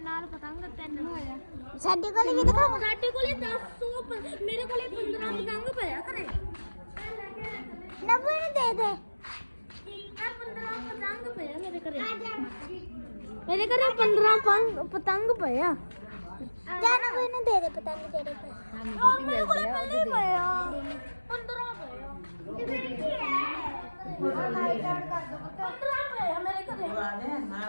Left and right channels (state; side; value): inverted; both; correlation -1.00